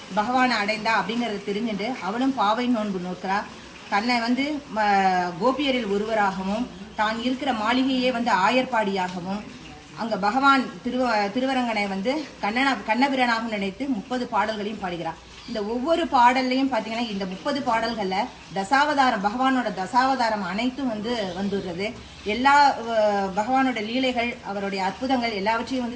பகவானை அடைந்தா அப்படிங்கிறத தெரிஞ்சுட்டு அவளும் பாவை நோன்பு நோக்கிறா. தன்னை வந்து கோபியரில் ஒருவராகவும் தான் இருக்கிற மாளிகையே வந்து ஆயர்பாடியாகவும் அங்கே பகவான் திருவரங்கனை வந்து கண்ணபிரானாகவும் நினைத்து 30 பாடல்களையும் பாடுகிறார். இந்த ஒவ்வொரு பாடல்லையும் பார்த்தீங்கன்னா இந்த 30 பாடல்களில் தசாவதாரம், பகவானோட தசாவதாரம் அனைத்தும் வந்து வந்துடுறது. எல்லா பகவானோட லீலைகள், அவருடைய அற்புதங்கள் எல்லாவற்றையும்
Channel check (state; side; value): identical; both; correlation 1.00